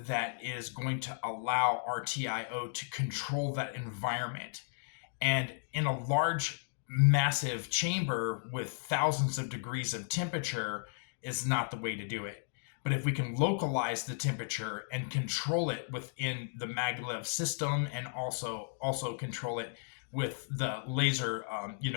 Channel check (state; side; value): silent; right; digital silence